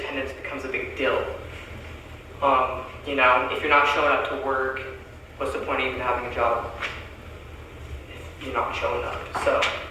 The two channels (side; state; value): both; identical; correlation 1.00